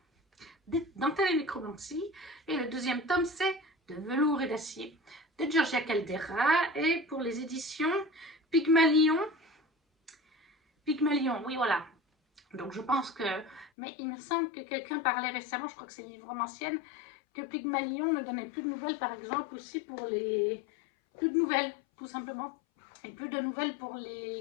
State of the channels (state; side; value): drops out; right; at 13.7 s